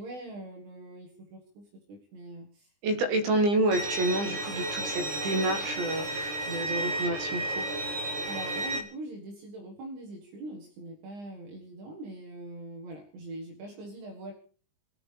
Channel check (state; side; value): late; left; 20 ms